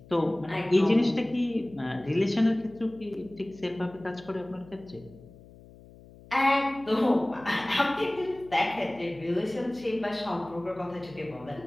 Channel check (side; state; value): left; noise; hum, 21 dB below the sound